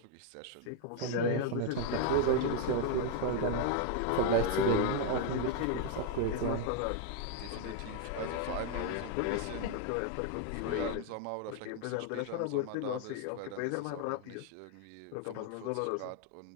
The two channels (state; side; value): different; both; correlation 0.01